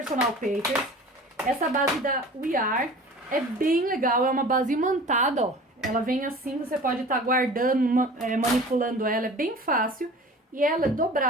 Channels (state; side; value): normal; both; correlation 0.42